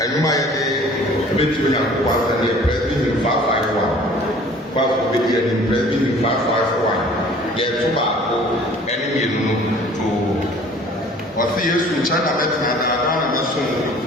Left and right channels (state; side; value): normal; both; correlation 0.50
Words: a yɛde bɛtumi nyankopɔn asɛ ne yɛ Presbyterian 551 kwaafo bɛdi anim Presbyterian 551 yɛto baako ɛne mmienu no to ɔse Yesu nkyɛn na mɛtena na na mɛsom